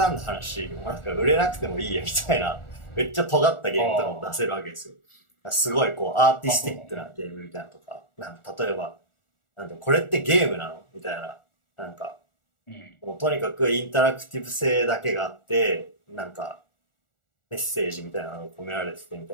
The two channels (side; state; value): right; late; 1.4 ms